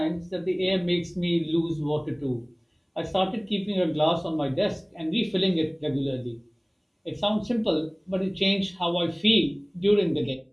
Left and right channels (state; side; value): identical; both; correlation 1.00